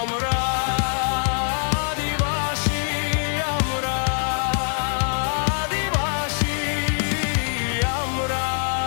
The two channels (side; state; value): right; silent; 59 dB below the other